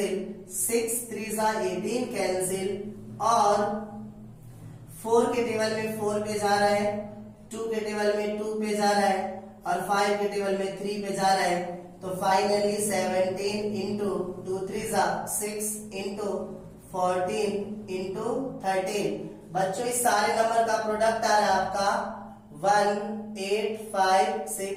6 3 18 कैंसिल और 4 के टेबल में 4 पे जा रहा है, 2 के टेबल में 2 पे जा रहा है और 5 के टेबल में 3 पे जा रहा है, तो फाइनली 17 इंटू 2 3 6 इंटू 14 इंटू 13। बच्चों इस सारे नंबर का प्रोडक्ट आ रहा है आपका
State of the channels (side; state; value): both; identical; correlation 1.00